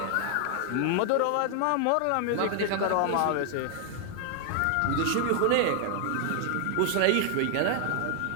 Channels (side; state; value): both; different; correlation 0.00